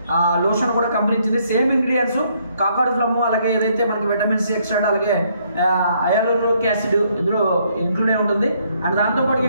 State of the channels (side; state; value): both; inverted; correlation -0.70